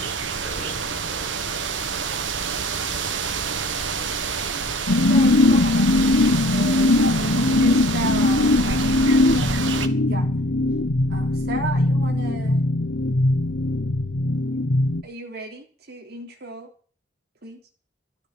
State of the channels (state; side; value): normal; both; correlation 0.53